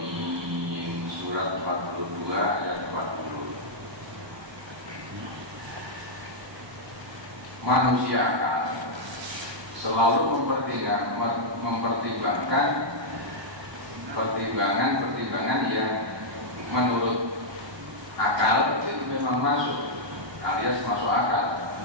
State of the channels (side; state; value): left; late; 1.3 ms